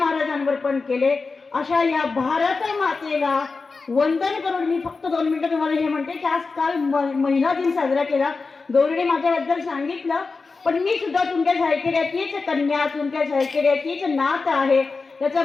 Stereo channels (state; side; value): quieter; right; 4.2 dB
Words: पण केले. अशा या भारत मातेला वंदन करून मी फक्त 2 मिनिटं तुम्हाला हे म्हणते की आज काल महिला दिन साजरा केला. गौरीने माझ्याबद्दल सांगितलं, पण मी सुद्धा तुमच्या सायकेड्याचीच कन्या, तुमच्या सायकेड्याचीच नात आहे. त्याचा